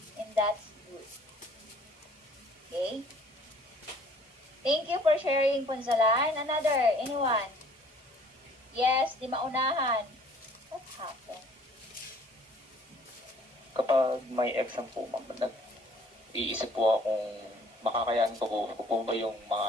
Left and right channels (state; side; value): normal; both; correlation 0.56